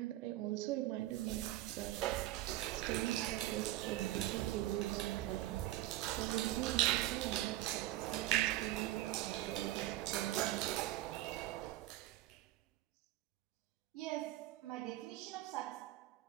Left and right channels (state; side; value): quieter; left; 15.4 dB